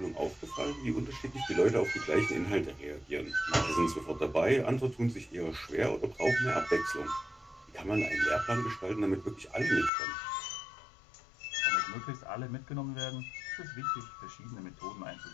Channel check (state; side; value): drops out; right; at 9.9 s